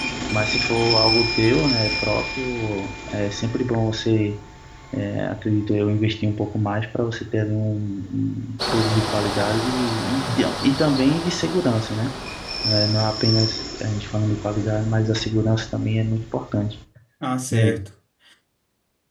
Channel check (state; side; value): identical; both; correlation 1.00